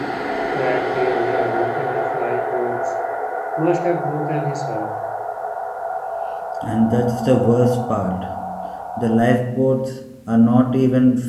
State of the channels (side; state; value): both; identical; correlation 1.00